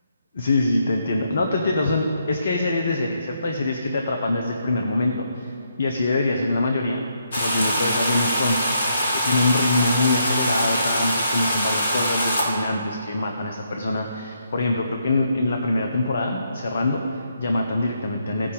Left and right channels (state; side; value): inverted; both; correlation -0.77